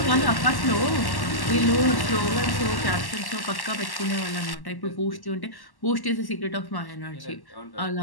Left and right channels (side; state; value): right; late; 1.1 ms